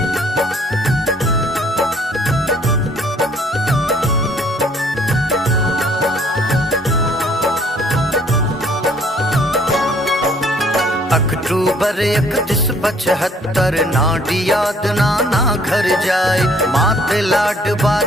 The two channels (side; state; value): both; normal; correlation 0.60